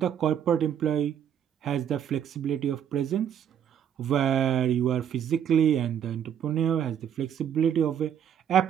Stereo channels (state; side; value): quieter; left; 9.1 dB